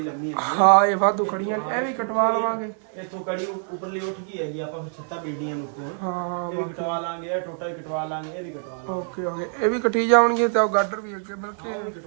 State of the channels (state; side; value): silent; left; digital silence